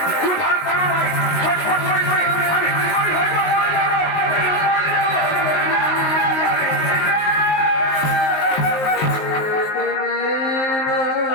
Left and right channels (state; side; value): late; right; 19 ms